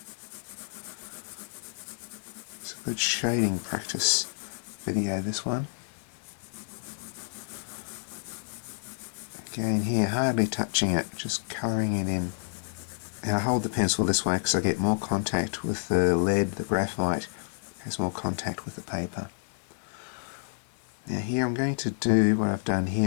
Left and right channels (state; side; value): silent; right; 58 dB below the other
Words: It's a good shading practice video, this one. Again here, hardly touching it, just colouring it in. And I hold the pencil this way because I get more contact with the lead, the graphite has more contact with the paper. Now here I'm going to do what I've done